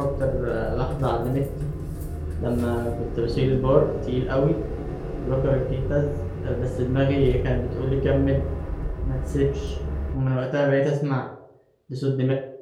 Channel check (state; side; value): identical; both; correlation 1.00